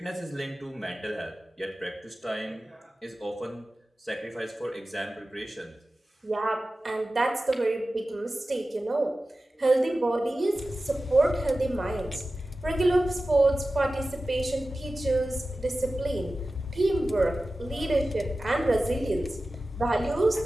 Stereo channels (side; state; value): both; normal; correlation 0.95